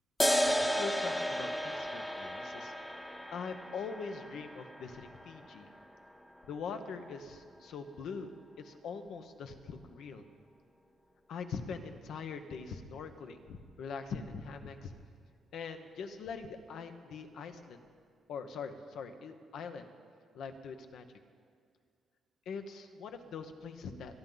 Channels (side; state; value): both; normal; correlation 0.88